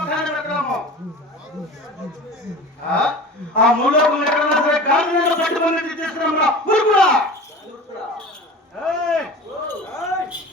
పెట్టడము ఆ మూలోకం ఎక్కడన్నా సరే కాళ్ళు పట్టుకుని తీసుకున్నామురా ఊరుకురా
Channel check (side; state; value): both; normal; correlation 0.36